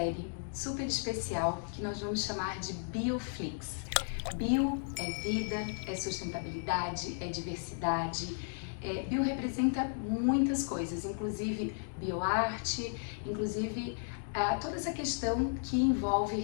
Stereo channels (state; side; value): silent; right; digital silence